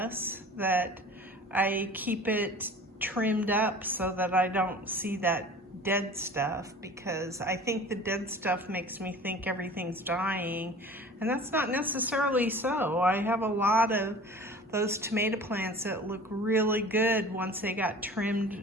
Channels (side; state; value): both; normal; correlation 0.42